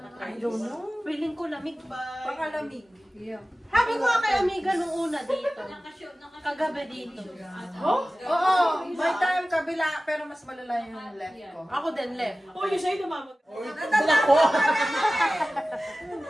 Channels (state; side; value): normal; both; correlation 0.96